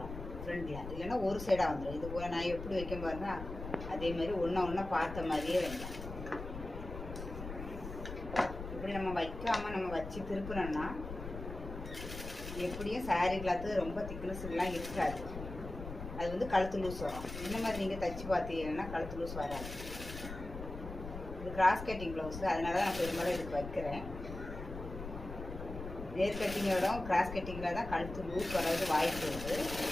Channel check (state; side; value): noise; left; rumble, 9 dB below the sound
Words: ஃப்ரண்டில். இல்லைன்னா ஒரு சைடாக வந்துடும். இது போல் நான் எப்படி வைக்க பாருங்க, அதே மாதிரி ஒன்றா பார்த்த மாதிரியே வைங்க. இப்படி நம்ம வைக்காமல் நம்ம வச்சு திருப்பினோம்னா எப்படியும் சாரீ கிளாத்து ரொம்ப திக்னஸ்லாம் இருக்காது. அது வந்து கழுத்து லூஸ் வரும். இந்த மாதிரி நீங்கள் தைச்சி பார்த்தீங்கன்னா கழுத்து லூஸ் வராது. இது கிராஸ் கட்டிங் ப்ளவுஸு, அதனால தான் நான் பெரும்பாலும் இதுக்கு வைக்கிறேன். நேர் கட்டிங்கோட கிராஸ் கட்டிங்கில் தான் கழுத்து லூஸ் வர்றது வாய்ப்பு இருக்குது.